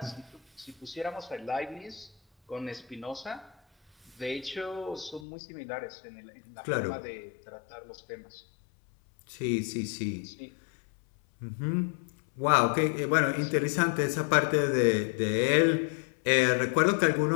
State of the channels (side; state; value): right; drops out; at 5.2 s